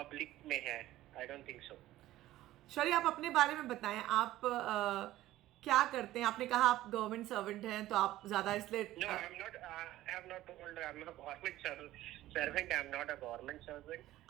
में है। I don't think so. शौर्य, आप अपने बारे में बताएं, आप क्या करते हैं? आपने कहा आप गवर्नमेंट सर्वेंट हैं तो आप ज्यादा इसलिए No, I'm not. I have not told I'm a government servant. I'm not a government servant.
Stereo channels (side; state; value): left; quieter; 15.2 dB